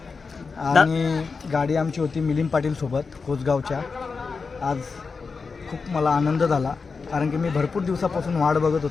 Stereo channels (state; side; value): quieter; right; 4.8 dB